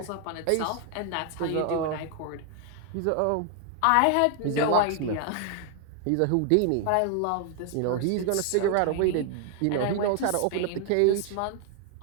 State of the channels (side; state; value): both; different; correlation 0.00